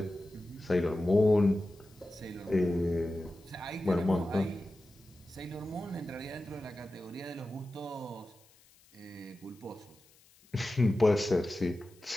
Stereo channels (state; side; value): noise; left; hiss, 29 dB below the sound